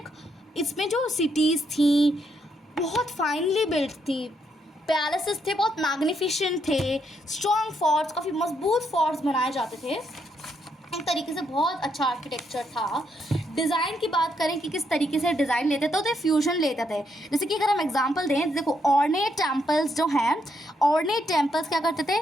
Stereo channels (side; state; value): both; normal; correlation 0.76